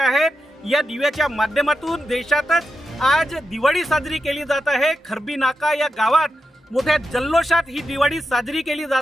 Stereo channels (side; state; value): both; normal; correlation 0.88